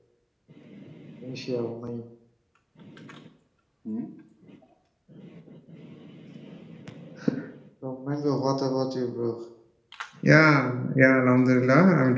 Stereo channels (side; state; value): both; identical; correlation 1.00